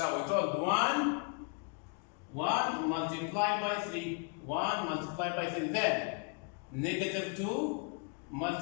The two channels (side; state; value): right; quieter; 36.4 dB